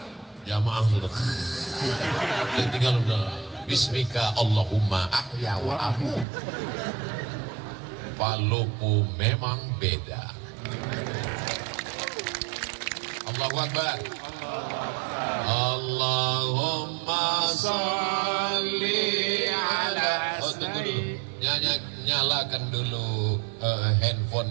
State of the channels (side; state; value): left; drops out; at 6.2 s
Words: Jamaah sudah tinggal udah bismika Allahumma ahya wa amu. Palopo memang beda. Allahu Akbar. Allahumma salli ala tunggu dulu. Nyalakan dulu